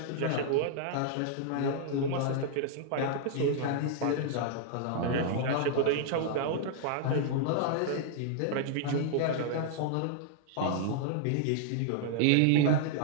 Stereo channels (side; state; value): both; different; correlation -0.01